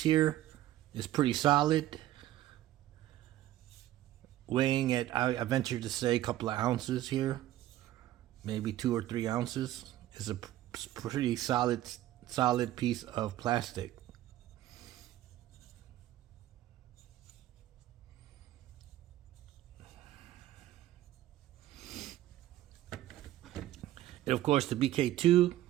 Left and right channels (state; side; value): quieter; left; 14.0 dB